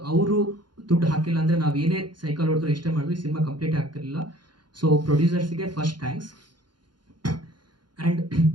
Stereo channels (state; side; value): late; left; 0.71 ms